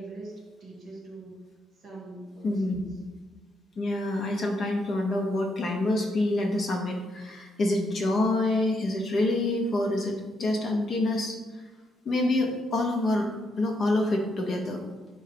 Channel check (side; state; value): both; normal; correlation 0.78